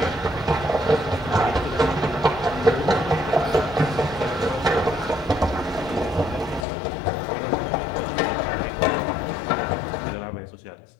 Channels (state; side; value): drops out; right; at 6.7 s